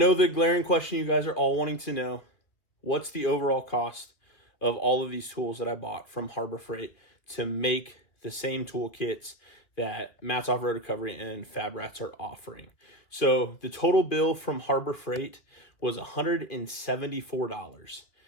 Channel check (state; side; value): late; right; 2.3 ms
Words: the glaring question you guys are all wanting to know, what's the overall cost of all of these tools that I bought from Harbor Freight to make the same toolkits that Matt's Off-Road Recovery and Fab Rats are offering. So the total bill from Harbor Freight was $174.